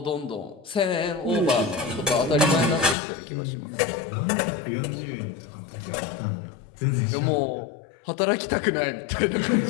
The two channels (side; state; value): right; drops out; at 3.0 s